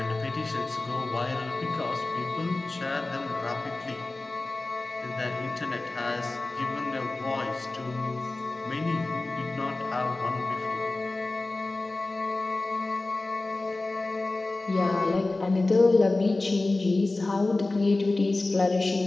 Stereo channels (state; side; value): quieter; right; 3.1 dB